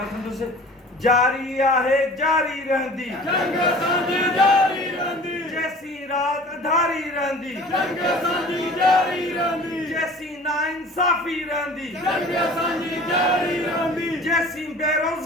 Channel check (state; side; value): normal; both; correlation 0.44